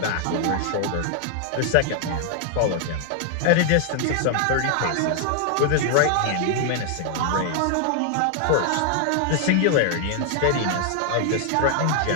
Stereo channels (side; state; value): both; different; correlation 0.00